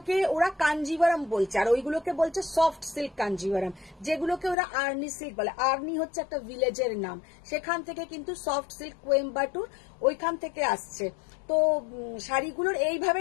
ওরা কাঞ্জিভারাম বলছে, আর ওইগুলোকে বলছে সফট সিল্ক কাঞ্জিভারাম, যেগুলোকে ওরা আর্নি সিল্ক বলে। আর্নি হচ্ছে একটা ভিলেজের নাম, সেখান থেকে কিন্তু সফট সিল্ক কোয়েম্বাটুর ওইখান থেকে আসছে। তো শাড়িগুলোর এইভাবে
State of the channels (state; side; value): drops out; right; at 4.5 s